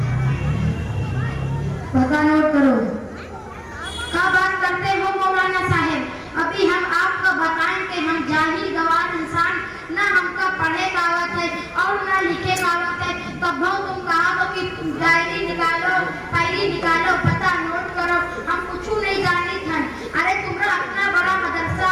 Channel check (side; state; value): both; identical; correlation 1.00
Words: पता नोट करो। क्या बात करते हो मौलाना साहब? अभी हम आपको बताएं कि हम जाहिल गवार इंसान, ना हमका पढ़े का आवत है और ना लिखे का आवत है। तब तुम कहा तो कि डायरी निकालो, फाइली निकालो, पता नोट करो, हम कुछ नहीं जानी था। अरे तुम्हारा अपना बड़ा मदरसा